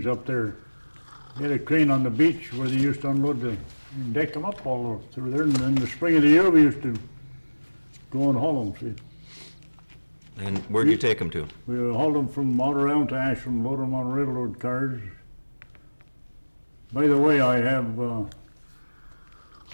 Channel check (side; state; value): both; inverted; correlation -1.00